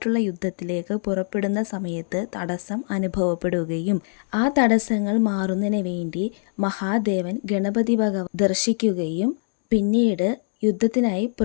യുദ്ധത്തിലേക്ക് പുറപ്പെടുന്ന സമയത്ത് തടസ്സം അനുഭവപ്പെടുകയും ആ തടസ്സങ്ങൾ മാറുന്നതിന് വേണ്ടി മഹാദേവൻ ഗണപതി ഭഗവാൻ ദർശിക്കുകയും പിന്നീട് യുദ്ധത്തിനായി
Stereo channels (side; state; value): right; silent; digital silence